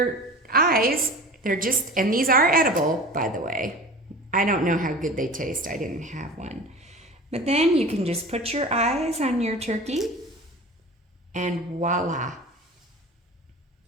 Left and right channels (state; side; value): normal; both; correlation 0.36